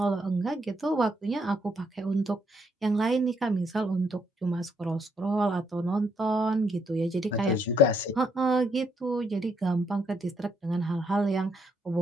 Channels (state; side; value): normal; both; correlation 0.73